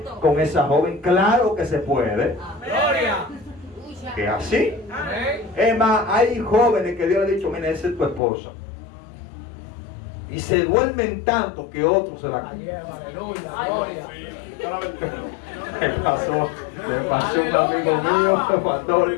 con esa joven. Claro que se puede. Gloria. Que así. Amén. Es más, hay jóvenes que Dios le ha dicho, mira, esa es tu esposa. Y se duermen tanto que otros se la... Aleluya. Gloria. Le pasó a un amigo mío,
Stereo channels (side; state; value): right; drops out; at 8.2 s